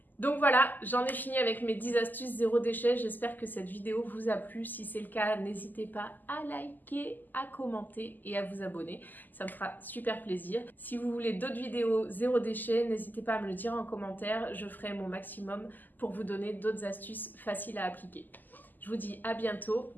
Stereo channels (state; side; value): late; right; 0.086 ms